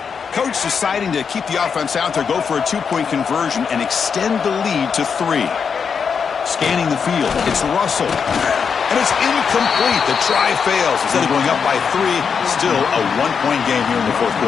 Coach deciding to keep the offense out there, go for a 2-point conversion, and extend the lead to 3. Scanning the field, it's Russell. And it's incomplete. The try fails. Instead of going up by 3, still a 1-point game here in the fourth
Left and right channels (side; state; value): right; quieter; 6.3 dB